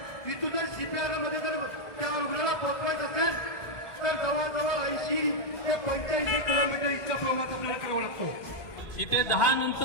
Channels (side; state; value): right; late; 1.7 ms